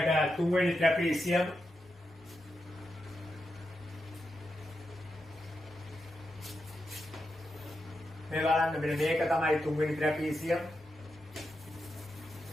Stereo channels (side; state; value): both; normal; correlation 0.86